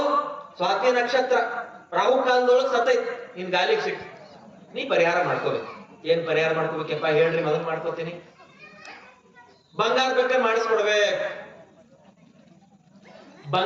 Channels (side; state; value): both; identical; correlation 1.00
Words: ಸ್ವಾತಿ ನಕ್ಷತ್ರ ರಾಹು ಕಾಲದೊಳಗ್ ಸತ್ತೈತಿ, ನಿನ್ ಗಾಲಿಗೆ ಸಿಕ್ತು, ನೀ ಪರಿಹಾರ ಮಾಡ್ಕೋಬೇಕು. ಏನ್ ಪರಿಹಾರ ಮಾಡ್ಕೋಬೇಕಪ್ಪ ಹೇಳ್ರಿ, ಮೊದಲು ಮಾಡ್ಕೋತೀನಿ. ಬಂಗಾರ ಬೆಕ್ಕನ್ನ ಮಾಡಿಸ್ಕೊಡ್ಬೇಕು.